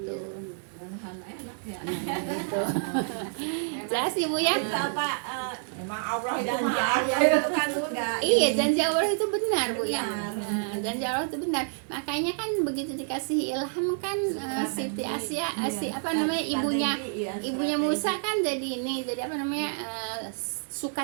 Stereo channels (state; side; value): silent; left; 59 dB below the other